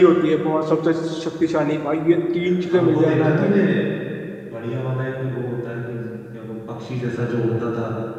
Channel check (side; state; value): both; identical; correlation 1.00